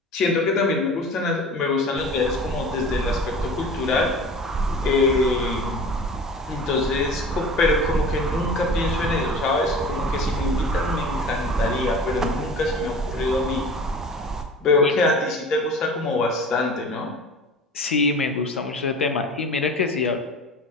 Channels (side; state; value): both; normal; correlation 0.39